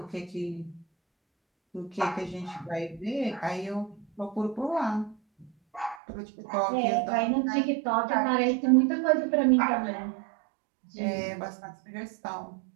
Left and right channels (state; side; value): drops out; left; at 6.0 s